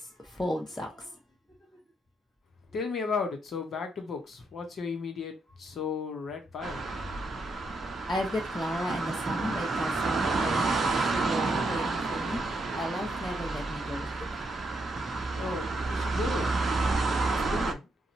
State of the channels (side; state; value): both; normal; correlation 0.79